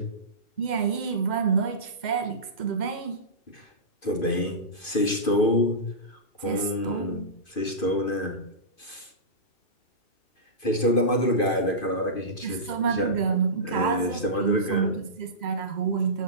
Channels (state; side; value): late; right; 2.5 ms